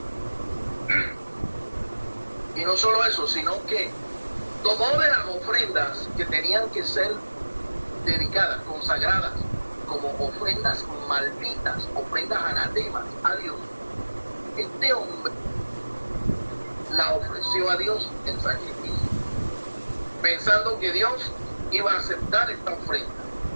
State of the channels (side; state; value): both; inverted; correlation -1.00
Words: Y no solo eso, sino que tomó de las ofrendas que tenían que ser dedicadas, consagradas, como ofrendas malditas, ofrendas anatemas a Dios. Este hombre la ofreció a Dios en sacrificio, pensando que Dios iba a aceptar esta ofrenda.